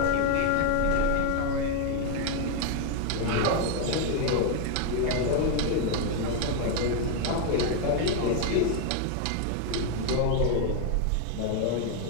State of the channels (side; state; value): both; different; correlation 0.01